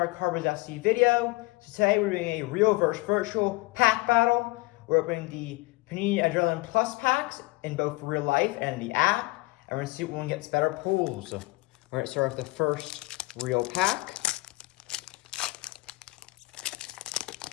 Carbos FC video. So today we're doing a real versus virtual pack battle. We're opening the Panini Adrenalyn Plus packs in both real life and the app. And we're going to see what one gets better pulls. We're going to start with the first real pack.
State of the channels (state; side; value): quieter; right; 22.9 dB